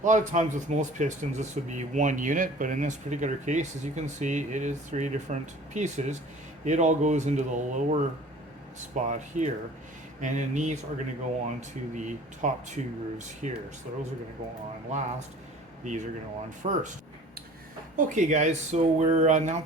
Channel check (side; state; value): both; normal; correlation 0.46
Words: A lot of times with most pistons this would be one unit, but in this particular case, as you can see, it is three different pieces. It all goes into the lower spot here, and then these are going to go on to the top two grooves here. So those are going to go on last. These are going to go on first. Okay guys, so we're now